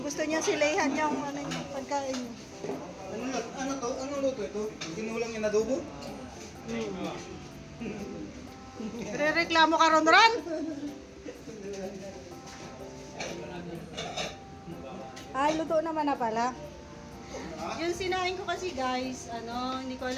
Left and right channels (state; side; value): identical; both; correlation 1.00